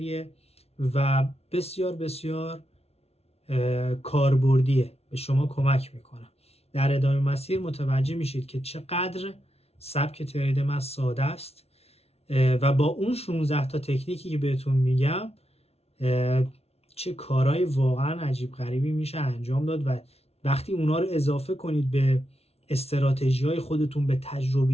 و بسیار بسیار کاربردیه، به شما کمک میکنه. در ادامه مسیر متوجه میشید که چقدر سبک ترید من ساده است و با اون 16 تا تکنیکی که بهتون میگم چه کارهای واقعا عجیب غریبی میشه انجام داد و وقتی اونا رو اضافه کنید به استراتژی‌های خودتون، به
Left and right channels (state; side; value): late; right; 0.30 ms